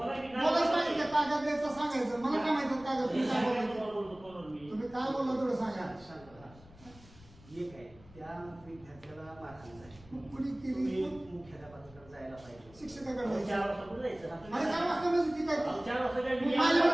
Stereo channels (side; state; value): left; noise; rumble, 23 dB below the sound